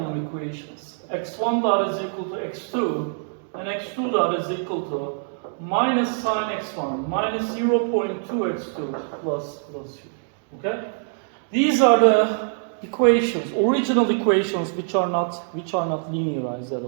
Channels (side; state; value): left; silent; digital silence